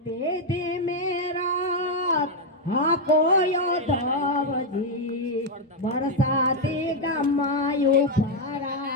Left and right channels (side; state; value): both; normal; correlation 0.02